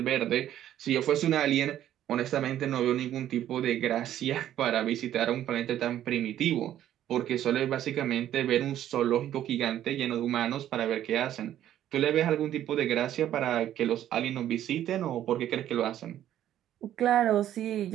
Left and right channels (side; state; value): left; quieter; 11.7 dB